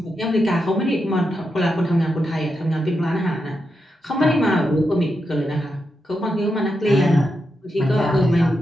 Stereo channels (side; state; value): both; normal; correlation 0.86